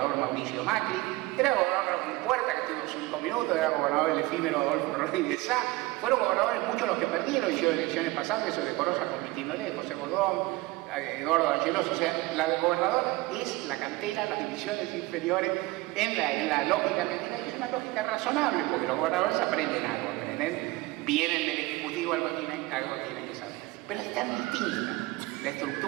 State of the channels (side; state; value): left; quieter; 20.4 dB